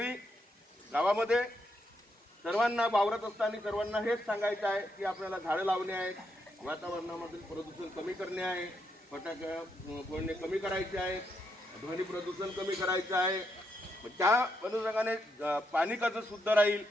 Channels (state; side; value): normal; both; correlation 0.80